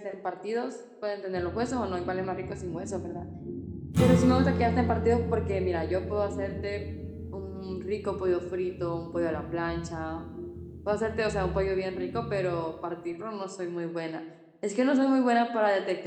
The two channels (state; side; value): identical; both; correlation 1.00